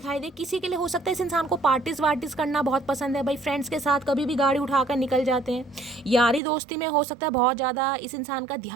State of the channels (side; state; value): left; drops out; at 6.4 s